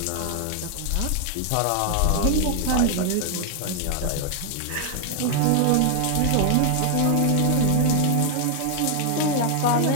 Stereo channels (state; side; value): different; both; correlation 0.00